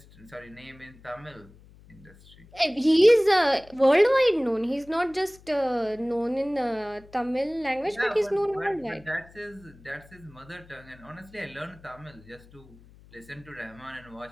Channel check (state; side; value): noise; left; hum, 24 dB below the sound